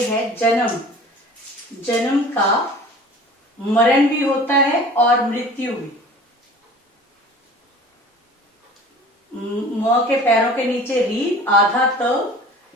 है जन्म। जन्म का मरण भी होता है और मृत्यु भी। म के पैरों के नीचे री, आधा त,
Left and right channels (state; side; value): normal; both; correlation 0.44